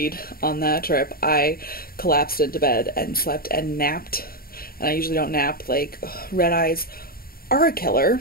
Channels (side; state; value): right; late; 0.43 ms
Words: on that trip. I collapsed into bed and slept and napped. And I usually don't nap. Like, red eyes are a killer.